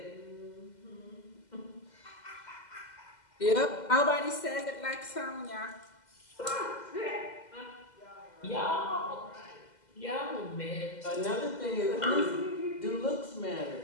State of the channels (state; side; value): late; right; 2.0 ms